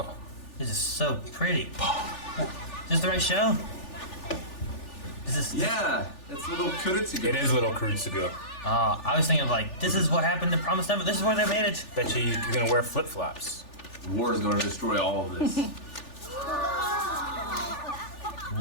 This is so pretty. Is this the right show? Is this? Yeah, it's little Kuritsugu. It is Little Kurutsugu. I was thinking like, this is what happened to Promised Neverland. This is where they made it. Bet you're going to wear flip-flops. War is going to destroy all of this.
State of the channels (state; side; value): late; right; 3.4 ms